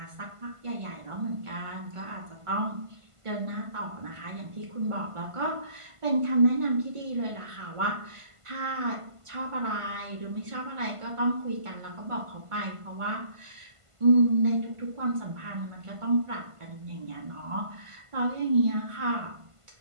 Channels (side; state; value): left; late; 1.5 ms